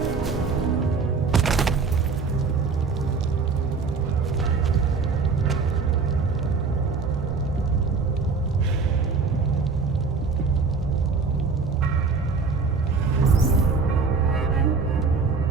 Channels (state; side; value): quieter; left; 4.8 dB